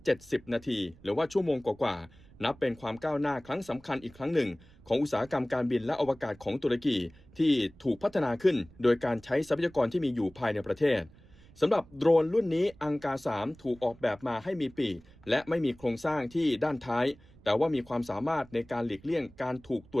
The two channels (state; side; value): noise; right; rumble, 24 dB below the sound